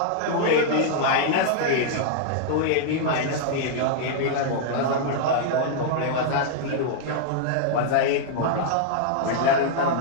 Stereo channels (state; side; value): different; both; correlation -0.01